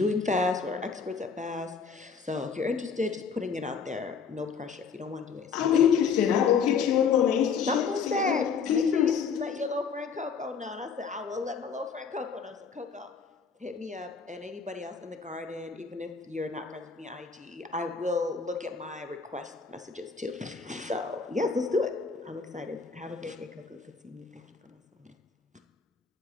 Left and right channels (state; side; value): quieter; right; 5.9 dB